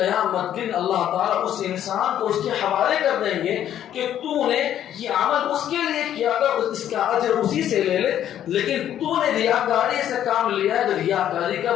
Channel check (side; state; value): right; quieter; 10.8 dB